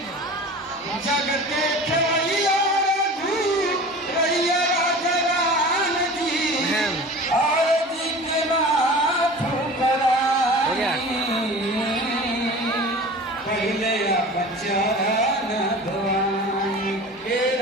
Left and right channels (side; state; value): both; normal; correlation 0.38